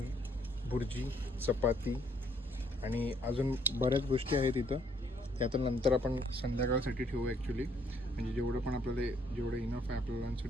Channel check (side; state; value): both; normal; correlation 0.67